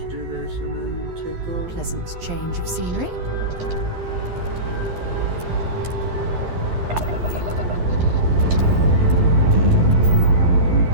do this and then take off. Pleasant change of scenery.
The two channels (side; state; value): left; late; 11 ms